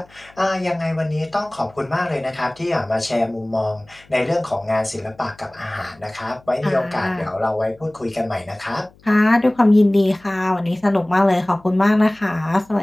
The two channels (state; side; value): noise; left; hum, 28 dB below the sound